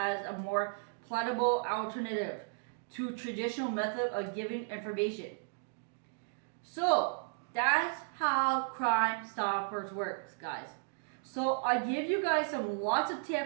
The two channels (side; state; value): left; silent; digital silence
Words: a more palatable alternative to traditional method of giving information. So that's how Crime Stoppers works, guys. So I give you guys some lots of